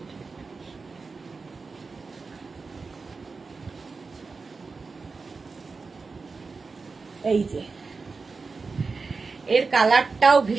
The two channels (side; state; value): left; quieter; 4.4 dB